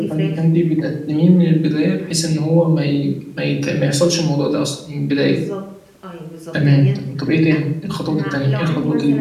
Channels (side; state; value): both; identical; correlation 1.00